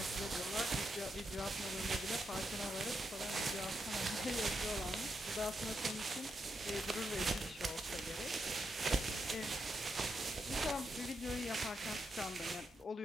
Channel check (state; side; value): normal; both; correlation 0.83